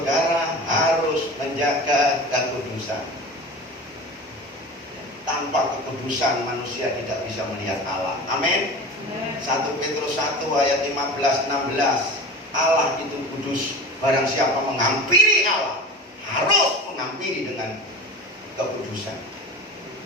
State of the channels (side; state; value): both; normal; correlation 0.33